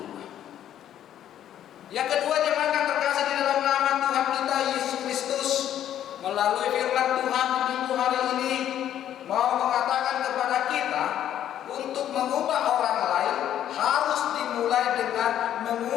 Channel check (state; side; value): quieter; right; 11.0 dB